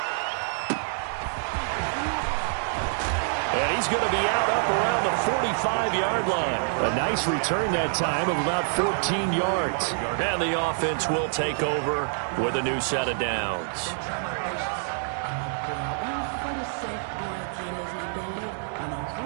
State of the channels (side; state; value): left; silent; digital silence